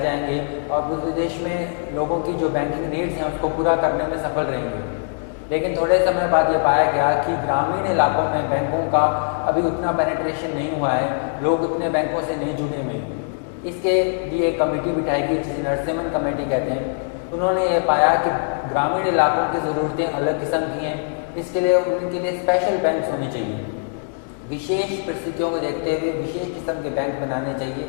जाएंगे और पूरे देश में लोगों की जो बैंकिंग नीड्स हैं उसको पूरा करने में सफल रहेंगे। लेकिन थोड़े समय बाद ये पाया गया कि ग्रामीण इलाकों में बैंकों का अभी उतना पेनिट्रेशन नहीं हुआ है, लोग उतने बैंकों से नहीं जुड़े हुए हैं। इसके लिए एक कमेटी बिठाई गई जिसे नरसिम्हन कमेटी कहते हैं। उन्होंने ये पाया कि ग्रामीण इलाकों की ज़रूरतें अलग किस्म की हैं, इसके लिए उनके लिए स्पेशल बैंक होने चाहिए। विशेष परिस्थितियों को देखते हुए विशेष किस्म के बैंक बनाने चाहिए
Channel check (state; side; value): silent; right; digital silence